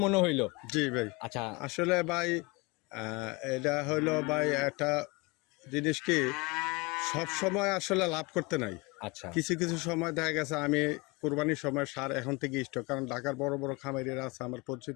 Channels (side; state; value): right; quieter; 26.3 dB